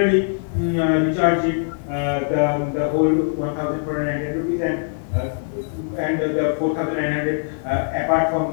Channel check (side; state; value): right; silent; digital silence